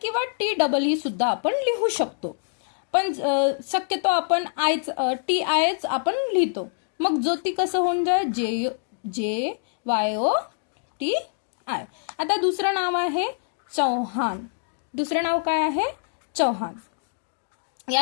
किंवा टी डबल ई सुद्धा आपण लिहू शकतो, पण शक्यतो आपण टी आयच आपण लिहितो. मग ज्योती कसं होऊन जाय? जे वायो टी आय. आता दुसरं नाव आहे चव्हाण. दुसरं नाव काय आहे? चव्हाण.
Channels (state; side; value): silent; right; digital silence